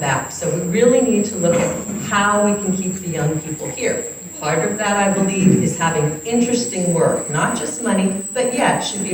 So we really need to look at how we can keep the young people here. Part of that, I believe, is having interesting work, not just money, but yeah, it should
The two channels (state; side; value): identical; both; correlation 1.00